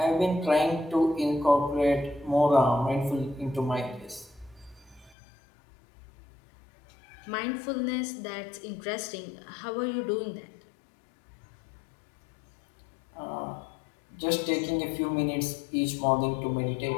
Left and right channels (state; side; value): drops out; right; at 5.2 s